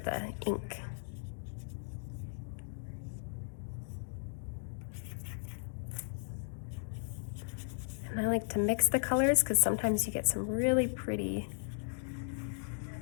the ink. And I like to mix the colors because sometimes you get some really pretty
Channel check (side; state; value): right; silent; digital silence